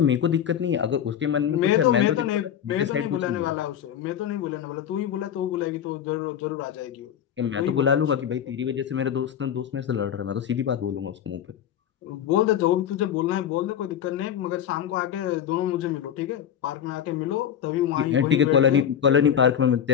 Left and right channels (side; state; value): right; quieter; 9.3 dB